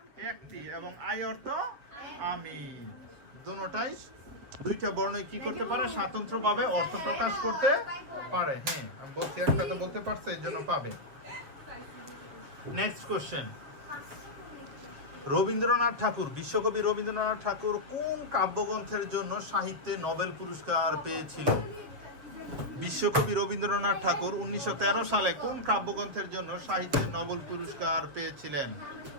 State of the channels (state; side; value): late; left; 7.1 ms